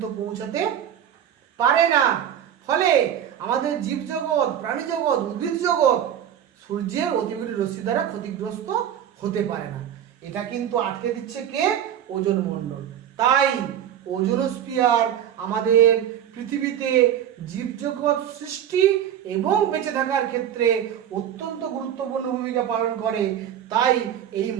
পৌঁছাতে পারে না। ফলে আমাদের জীবজগৎ, প্রাণী জগৎ, উদ্ভিদ জগৎ সূর্যের অতিবেগুনি রশ্মি দ্বারা ক্ষতিগ্রস্ত হতে পারে না। এটা কিন্তু আটকে দিচ্ছে কে? ওজোন মণ্ডল। তাই ওজোনোস্ফিয়ার আমাদের পৃথিবীতে জীবজগৎ সৃষ্টি এবং বেঁচে থাকার ক্ষেত্রে অত্যন্ত গুরুত্বপূর্ণ ভূমিকা পালন করে। তাই এই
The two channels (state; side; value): quieter; left; 10.0 dB